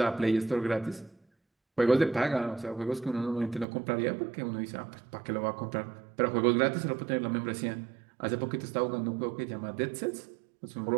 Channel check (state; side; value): drops out; left; at 3.7 s